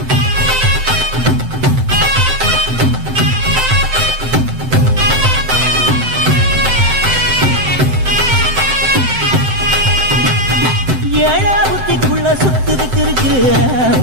ஏழா புத்திக்குள்ள சுத்துதுக்கு இருக்கு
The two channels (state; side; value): late; left; 7.8 ms